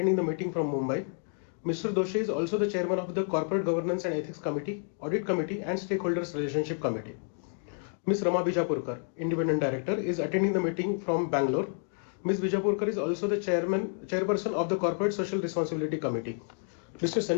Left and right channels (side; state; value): right; silent; 58 dB below the other